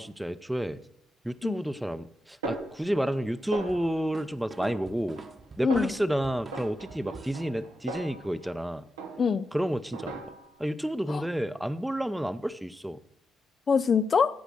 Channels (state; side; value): normal; both; correlation 0.89